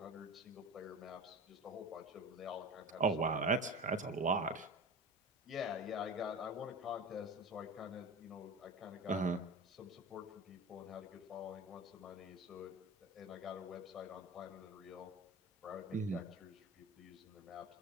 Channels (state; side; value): normal; both; correlation 0.31